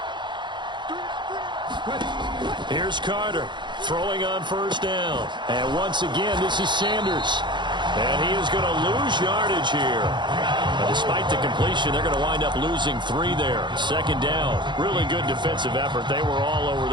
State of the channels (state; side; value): late; left; 0.22 ms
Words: Here's Carter throwing on first down. And once again, this is Sanders. And he is going to lose yardage here. But despite the completion, they're going to wind up losing 3 there. Second down. Really good defensive effort. They were all over